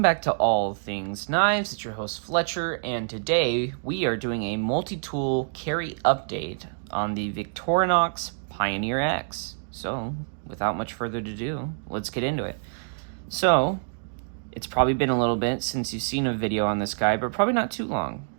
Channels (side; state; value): left; silent; digital silence